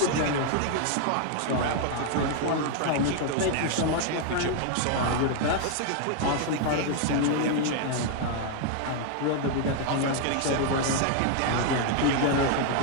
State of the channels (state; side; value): different; both; correlation 0.00